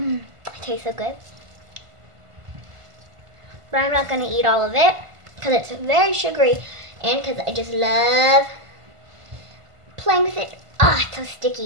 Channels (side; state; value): left; late; 1.5 ms